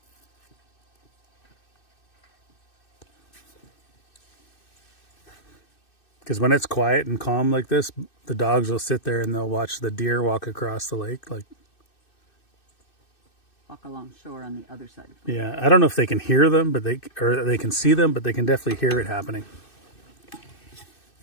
Because when it's quiet and calm like this, the dogs will sit there and they'll watch the deer walk across the lake, like... Walk along shore on the other side of it. Yeah, I don't know if they can hear them, but they can see them, but they can definitely hear it happening.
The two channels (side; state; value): right; late; 2.6 ms